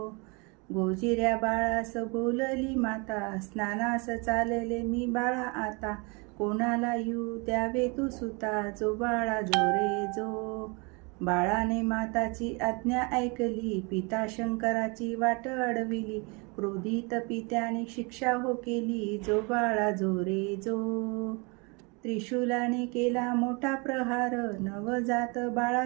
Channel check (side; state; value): left; quieter; 30.3 dB